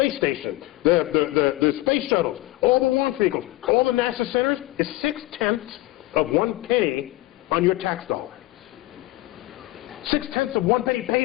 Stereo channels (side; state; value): right; quieter; 18.6 dB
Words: station, the space shuttles, all the launch vehicles, all the NASA centers is 0.6 of 1 penny on your tax dollar. 0.6 of 1 penny